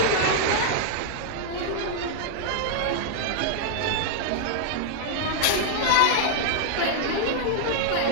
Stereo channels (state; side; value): different; both; correlation -0.01